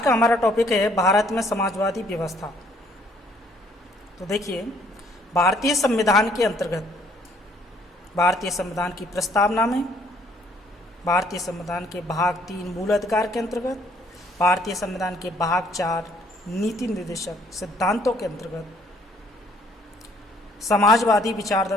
का हमारा टॉपिक है भारत में समाजवादी व्यवस्था। तो देखिए, भारतीय संविधान के अंतर्गत भारतीय संविधान की प्रस्तावना में, भारतीय संविधान के भाग 3 मूल अधिकार के अंतर्गत, भारतीय संविधान के भाग 4 नीति निर्देशक सिद्धांतों के अंतर्गत समाजवादी विचार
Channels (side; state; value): both; normal; correlation 0.63